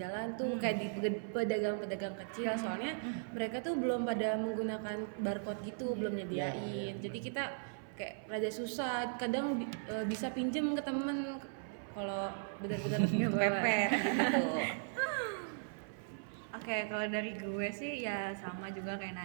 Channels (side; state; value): left; silent; 53 dB below the other